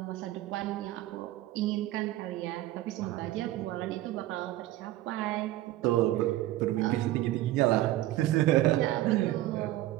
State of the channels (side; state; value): left; quieter; 15.5 dB